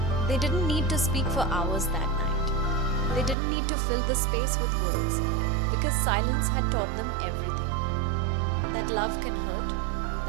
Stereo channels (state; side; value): drops out; left; at 3.4 s